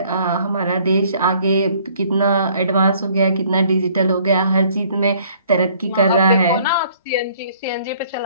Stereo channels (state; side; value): inverted; both; correlation -0.59